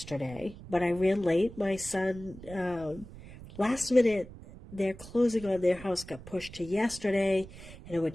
but I ran late. My son, last minute, their closing on their house got pushed to yesterday, and I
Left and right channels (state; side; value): noise; right; rumble, 16 dB below the sound